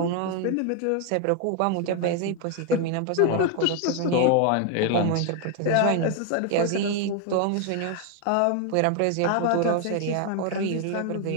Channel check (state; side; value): different; both; correlation 0.00